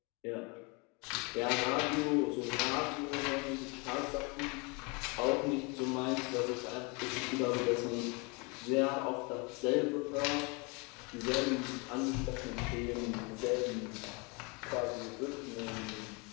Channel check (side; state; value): right; quieter; 30.2 dB